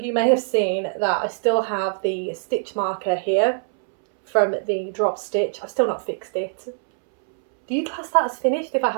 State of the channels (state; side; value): silent; left; 64 dB below the other